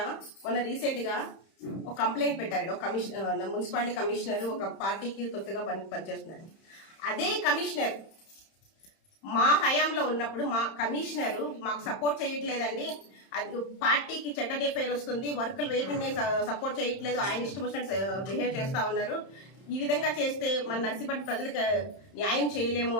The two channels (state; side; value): late; right; 31 ms